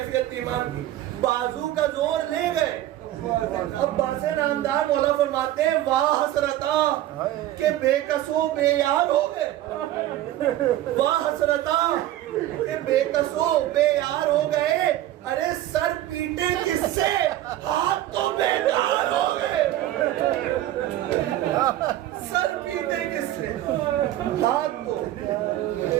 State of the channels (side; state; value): left; quieter; 13.9 dB